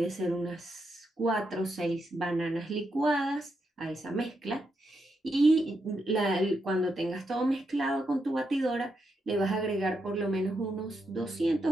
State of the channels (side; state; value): both; normal; correlation 0.82